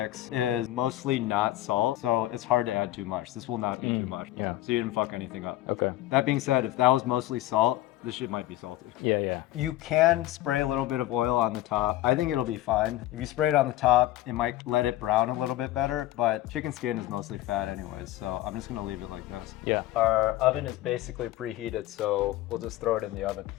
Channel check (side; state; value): right; quieter; 15.2 dB